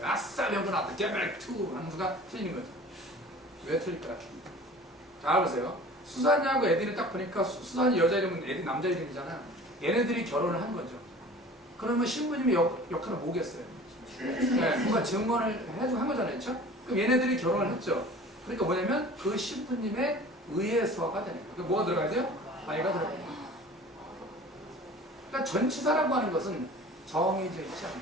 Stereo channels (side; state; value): both; normal; correlation 0.43